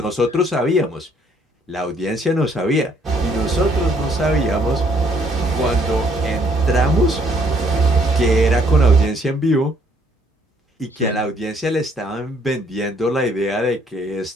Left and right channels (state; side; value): normal; both; correlation 0.66